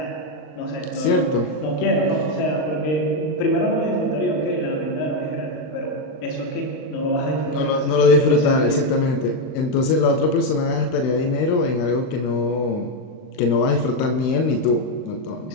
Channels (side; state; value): right; late; 39 ms